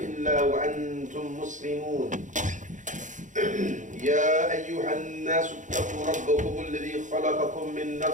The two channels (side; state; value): left; late; 0.36 ms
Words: وأنتم مسلمون يا أيها الناس اتقوا ربكم الذي خلقكم من